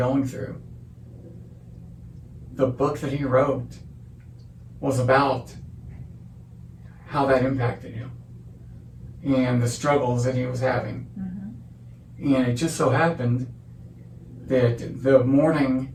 through. The book that he wrote was about how that impacted him and the struggles that he was having. Mm-hmm. And it just so happened that the morning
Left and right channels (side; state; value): both; identical; correlation 1.00